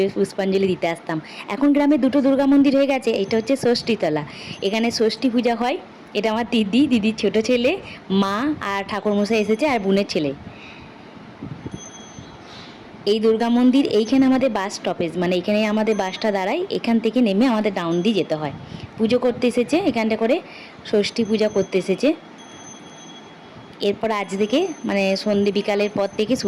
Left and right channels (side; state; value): both; identical; correlation 1.00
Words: পুষ্পাঞ্জলি দিতে আসতাম। এখন গ্রামে দুটো দুর্গা মন্দির হয়ে গেছে। এটা হচ্ছে ষষ্ঠীতলা, এখানে ষষ্ঠী পূজা হয়। এটা আমার দিদির ছোট ছেলে, মা আর ঠাকুরমশাই এসেছে আর বোনের ছেলে। এই দুর্গা মন্দির এইখানে আমাদের বাস স্টপেজ, মানে এখানে আমাদের বাসটা দাঁড়ায়। এখান থেকে নেমে আমাদের ডাউন দিয়ে যেতে হয়। পুজো করতে এসেছে এখানটা করে, ষষ্ঠী পূজা করতে এসেছে। এরপর আজ থেকে মানে সন্ধ্যে বিকালের পর থেকে